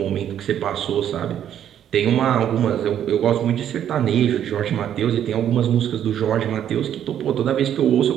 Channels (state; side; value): quieter; left; 10.1 dB